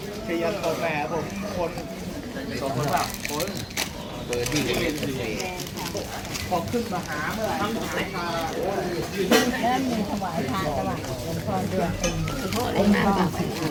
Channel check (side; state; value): both; identical; correlation 1.00